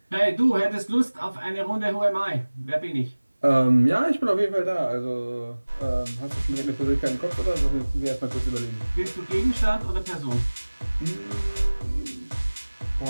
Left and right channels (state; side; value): inverted; both; correlation -1.00